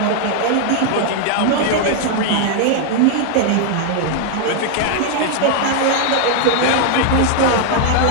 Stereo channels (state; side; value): different; both; correlation 0.00